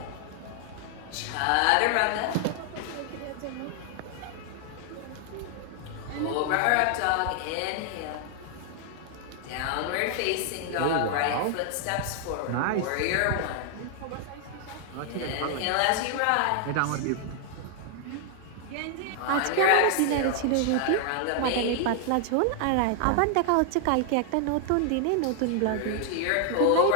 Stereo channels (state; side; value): different; both; correlation 0.00